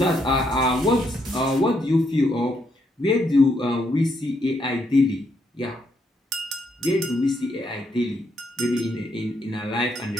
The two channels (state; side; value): normal; both; correlation 0.76